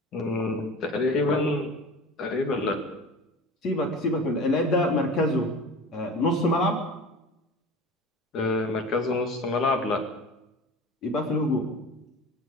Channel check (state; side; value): normal; both; correlation 0.36